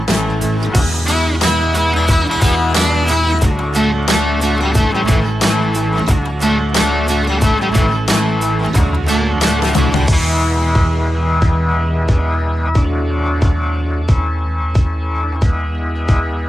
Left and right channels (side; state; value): both; normal; correlation 0.92